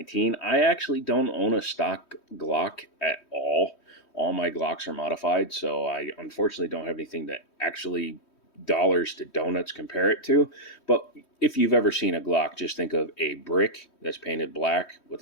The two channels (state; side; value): late; right; 3.1 ms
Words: I actually don't own a stock Glock at all. All my Glocks are modified, so I unfortunately don't have anything to actually dollars to donuts compare it to. But if you've ever seen a Glock, just think of a brick that's painted black with